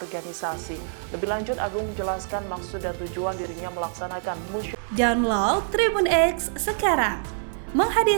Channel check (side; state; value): left; silent; 61 dB below the other